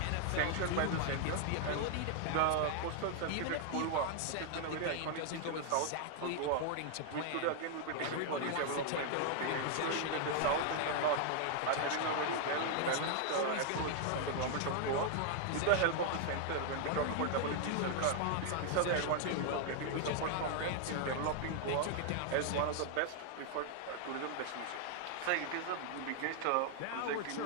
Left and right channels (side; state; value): both; different; correlation 0.00